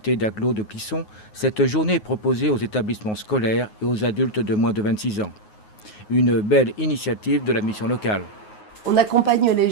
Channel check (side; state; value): right; late; 9.5 ms